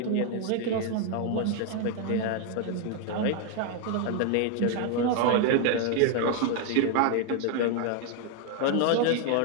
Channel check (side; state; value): both; different; correlation 0.01